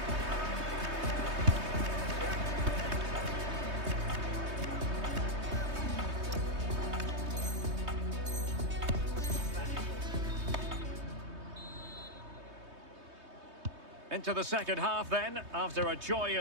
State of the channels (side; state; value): left; late; 3.2 ms